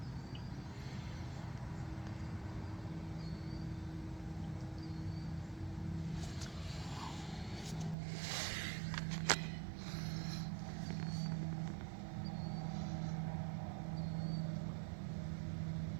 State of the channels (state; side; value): drops out; left; at 8.0 s